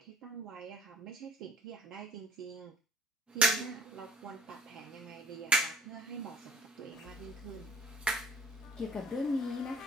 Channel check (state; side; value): normal; both; correlation 0.55